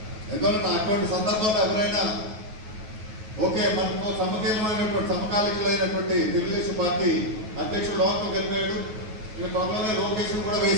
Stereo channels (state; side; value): late; left; 9.3 ms